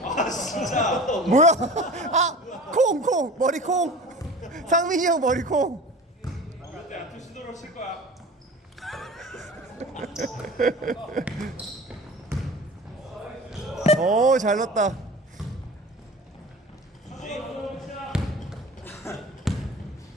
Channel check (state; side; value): normal; both; correlation 0.38